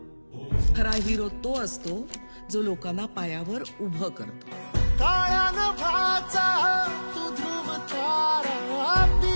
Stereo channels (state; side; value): inverted; both; correlation -1.00